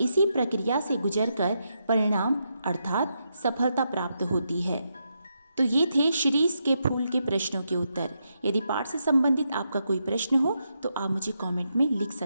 इसी प्रक्रिया से गुजरकर परिणाम अर्थात सफलता प्राप्त होती है। तो ये थे शिरीष के फूल के प्रश्नों के उत्तर। यदि पाठ से संबंधित आपका कोई प्रश्न हो तो आप मुझे कमेंट में लिख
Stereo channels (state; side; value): inverted; both; correlation -0.83